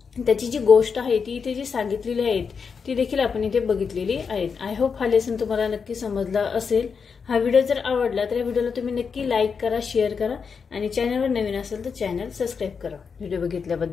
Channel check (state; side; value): quieter; right; 5.8 dB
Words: त्याची जी गोष्ट आहे ती इथे जी सांगितलेली आहे ती देखील आपण इथे बघितलेली आहेत. आय होप हा लेसन तुम्हाला नक्की समजला असेल. हा व्हिडिओ जर आवडला तर या व्हिडिओला तुम्ही नक्की लाईक करा, शेअर करा आणि चॅनलवर नवीन असेल तर चॅनल सबस्क्राईब करा. व्हिडिओ